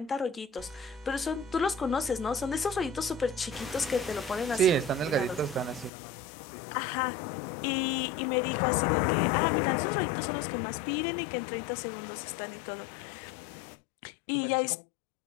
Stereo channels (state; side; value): drops out; right; at 5.9 s